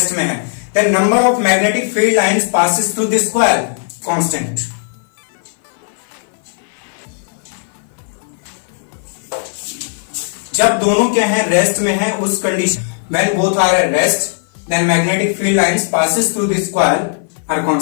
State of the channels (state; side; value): silent; right; 55 dB below the other